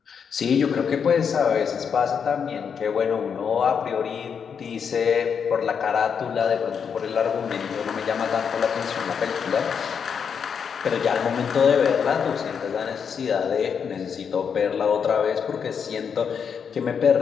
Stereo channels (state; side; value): quieter; right; 6.9 dB